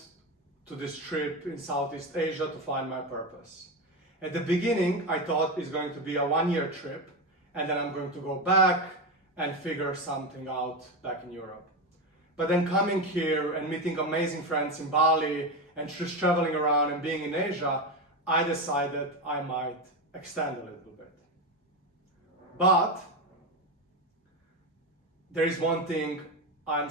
to this trip in Southeast Asia to find my purpose. At the beginning, I thought it's going to be a one-year trip, and then I'm going to go back and figure something out back in Europe. But then coming here and meeting amazing friends in Bali and just traveling around and being in Asia, I decided I might extend a little bit. But there is one thing I'm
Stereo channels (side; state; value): both; normal; correlation 0.16